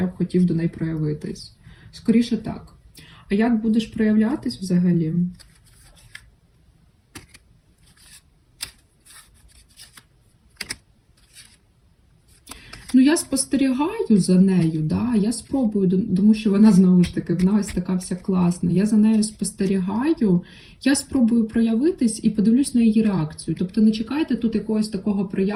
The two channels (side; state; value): both; identical; correlation 1.00